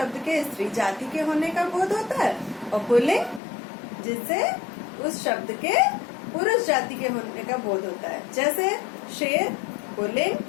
के स्त्री जाति के होने का बोध होता है, और पुल्लिंग जिससे उस शब्द के पुरुष जाति के होने का बोध होता है। जैसे शेर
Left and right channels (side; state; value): right; drops out; at 3.4 s